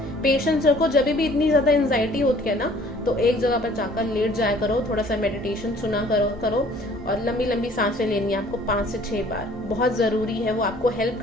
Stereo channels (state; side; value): normal; both; correlation 0.55